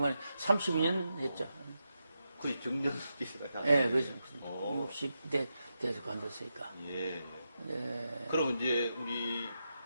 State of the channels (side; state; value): both; inverted; correlation -0.87